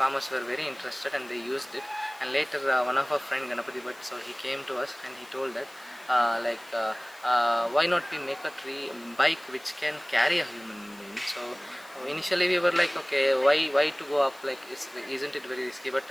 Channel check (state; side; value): noise; left; hiss, 24 dB below the sound